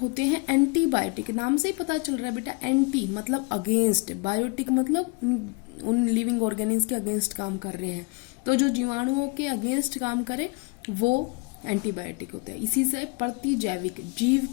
होते हैं एंटीबायोटिक। नाम से ही पता चल रहा है बेटा, एंटी मतलब अगेंस्ट, बायोटिक मतलब उन लिविंग ऑर्गेनिज्म के अगेंस्ट काम कर रहे हैं। तो जो जीवाणुओं के अगेंस्ट काम करे वो एंटीबायोटिक होते हैं। इसी से प्रतिजैविक, जीव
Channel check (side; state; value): right; quieter; 30.1 dB